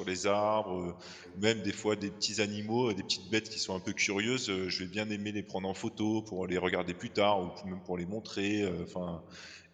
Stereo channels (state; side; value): identical; both; correlation 1.00